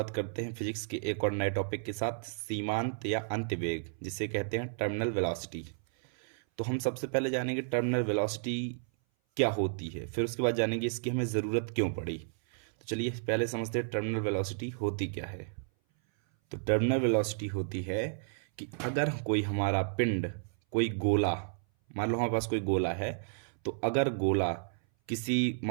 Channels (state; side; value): silent; left; 56 dB below the other